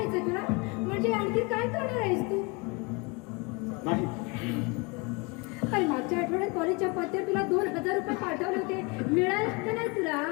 तुला? म्हणजे आणखी काय करणार आहेस तू? नाही अरे मागच्या आठवड्यात कॉलेजच्या पत्त्यावर तुला 2,000 रुपये पाठवले होते, मिळाले का नाही तुला?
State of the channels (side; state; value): right; quieter; 28.7 dB